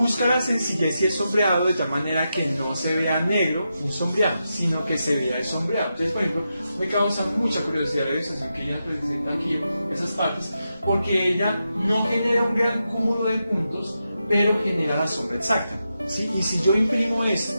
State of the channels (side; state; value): both; inverted; correlation -0.87